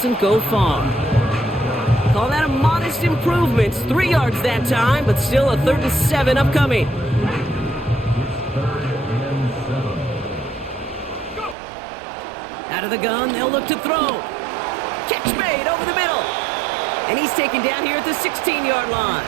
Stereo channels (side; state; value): left; drops out; at 11.6 s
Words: go far. Call that a modest improvement. 3 yards that time, but still a 3rd and 7 upcoming. Out of the gun, they'll look to throw. Catch made over the middle. And he's taken down here at the 16-yard line.